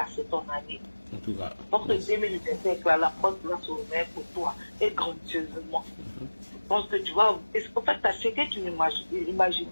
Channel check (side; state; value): both; inverted; correlation -1.00